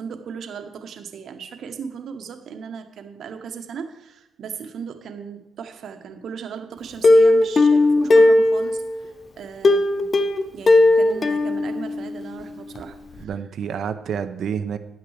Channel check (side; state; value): both; normal; correlation 0.91